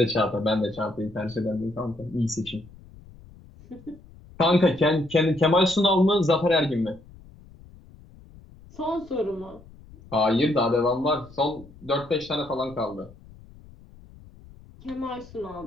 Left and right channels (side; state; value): left; noise; rumble, 22 dB below the sound